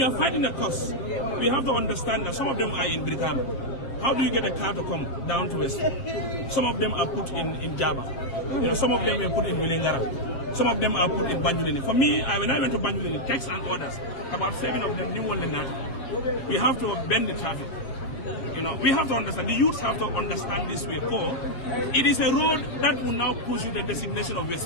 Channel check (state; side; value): late; right; 7.5 ms